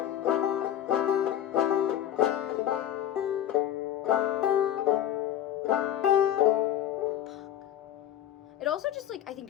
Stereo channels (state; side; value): quieter; right; 11.2 dB